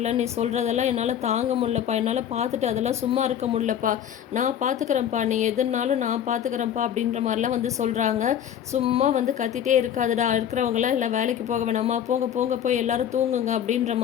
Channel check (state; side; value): quieter; right; 9.7 dB